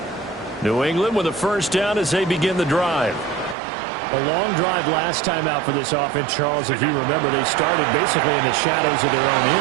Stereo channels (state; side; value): drops out; left; at 3.6 s